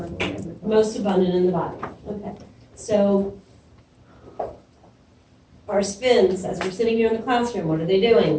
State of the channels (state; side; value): identical; both; correlation 1.00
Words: in the body. Most abundant in the body. Okay. So our spins, as we're sitting here in the classroom, what are they